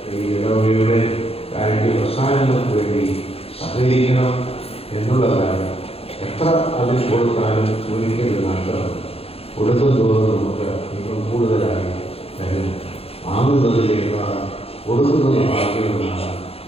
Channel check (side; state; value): right; late; 0.28 ms